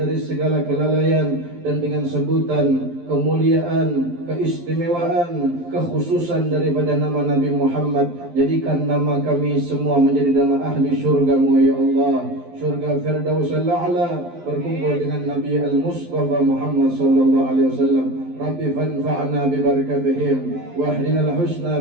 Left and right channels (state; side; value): late; left; 12 ms